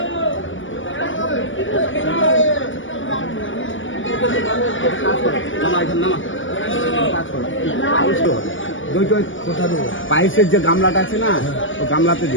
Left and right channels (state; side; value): late; right; 0.56 ms